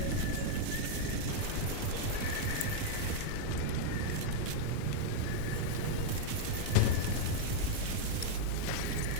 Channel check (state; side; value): different; both; correlation 0.00